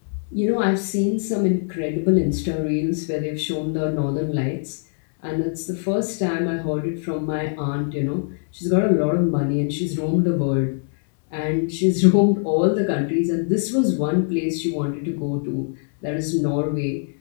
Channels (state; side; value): silent; right; 64 dB below the other